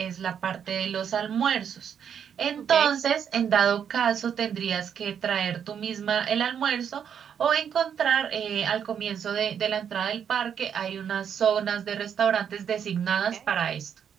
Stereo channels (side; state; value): left; quieter; 8.1 dB